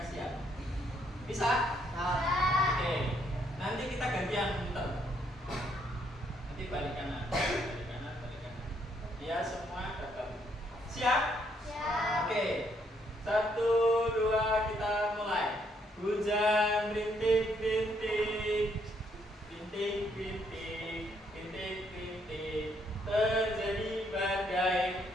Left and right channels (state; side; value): normal; both; correlation 0.72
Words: Bisa? Oke. Nanti kita gantian muter. Nanti balik kanan, balik kanan, balik kanan. Biar semua dapat. Siap? Siap. Oke. 1, 2, kita mulai. Hujan rintik-rintik, rintik-rintik, rintik-rintik. Terjadi badai.